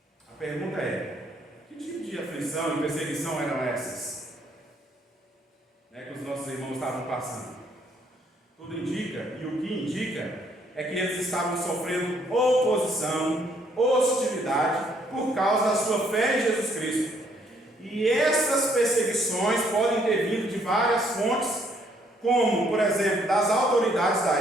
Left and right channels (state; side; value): normal; both; correlation 0.67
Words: A pergunta é: que tipo de aflição e perseguição eram essas que os nossos irmãos estavam passando? Tudo indica, e o que indica, é que eles estavam sofrendo oposição, hostilidade, por causa da sua fé em Jesus Cristo. E essas perseguições podem ter vindo de várias fontes, como, por exemplo, das autoridades da